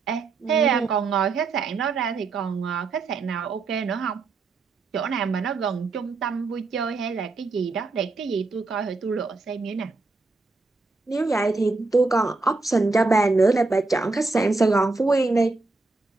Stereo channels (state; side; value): quieter; left; 3.7 dB